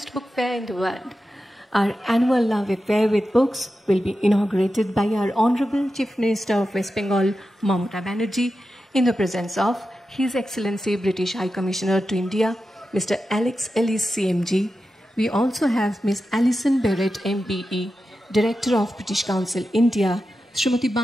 book fair in the world. Our annual Love Affair with Books will be inaugurated by our Honorable Chief Minister of West Bengal, Mamata Banerjee, in the presence of His Excellency British High Commissioner to India, Mr. Alex Ellis CMG. We also have Ms. Alison Barrett MBE, Director of British Council India, Srimati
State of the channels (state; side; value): normal; both; correlation 0.91